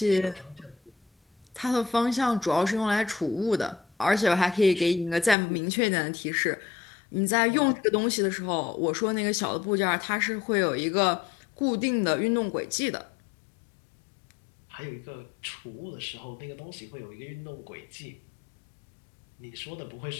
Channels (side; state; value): right; drops out; at 5.4 s